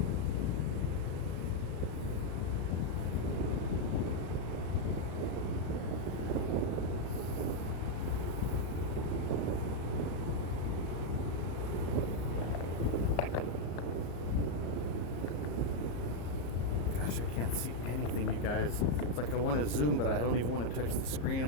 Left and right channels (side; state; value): right; late; 34 ms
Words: I can't see anything, you guys. It's like I want to zoom, but I don't even want to touch the screen.